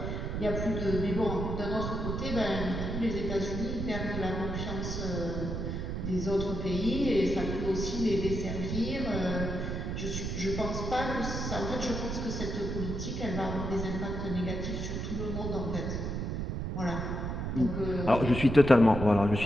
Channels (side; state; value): right; noise; rumble, 3 dB below the sound